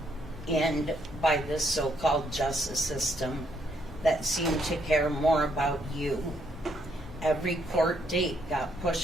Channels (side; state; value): both; normal; correlation 0.72